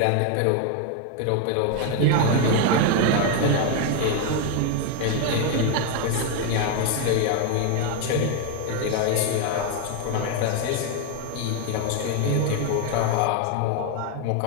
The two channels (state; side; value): different; both; correlation 0.01